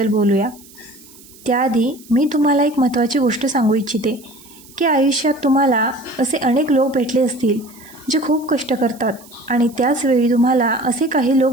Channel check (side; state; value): right; noise; hiss, 23 dB below the sound